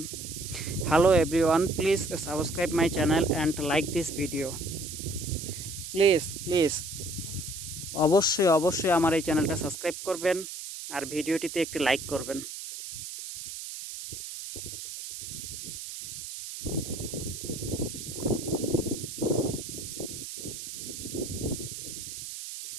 Hello everyone, please subscribe my channel and like this video. Please অবশ্যই আমার এই চ্যানেলটা সাবস্ক্রাইব করবেন আর ভিডিওটিতে একটি লাইক করবেন।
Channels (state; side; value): noise; right; hiss, 9 dB below the sound